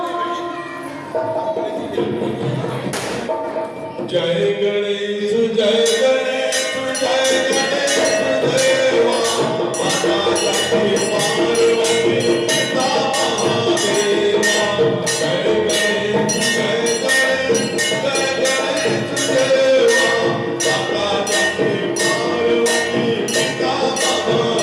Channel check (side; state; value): both; identical; correlation 1.00